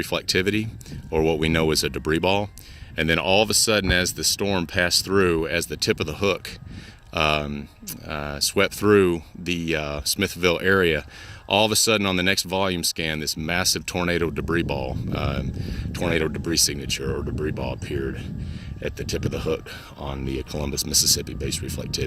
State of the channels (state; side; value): identical; both; correlation 1.00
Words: or what we know as a debris ball. And then all of a sudden, as the storm passed through, as the tip of the hook swept through the Smithville area, all of a sudden on the next volume scan, this massive tornado debris ball, tornado debris signature or debris ball appeared at the tip of the hook on the Columbus, Mississippi base